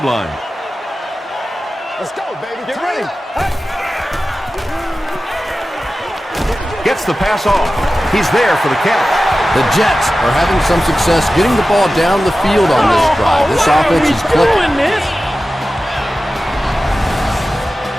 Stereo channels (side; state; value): both; normal; correlation 0.95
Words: line. Let's go, baby. Get ready. Gets the pass off. He's there for the catch. The Jets are having some success getting the ball down the field on this drive. This offense is clicking.